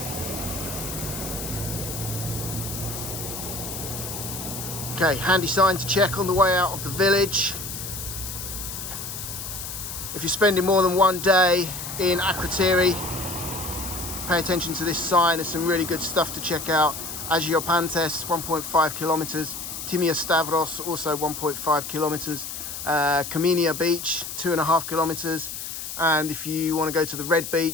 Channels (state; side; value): noise; left; hiss, 7 dB below the sound